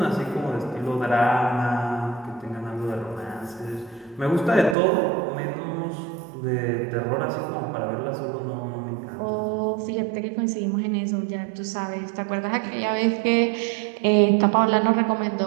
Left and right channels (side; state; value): left; drops out; at 4.8 s